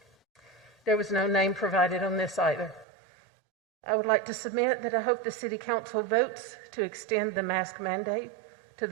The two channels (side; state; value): left; drops out; at 2.9 s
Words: there was no name provided on this either. I would like to submit that I hope the City Council votes to extend the mask mandate to